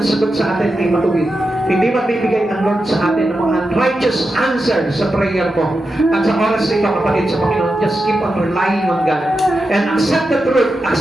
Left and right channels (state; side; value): normal; both; correlation 0.89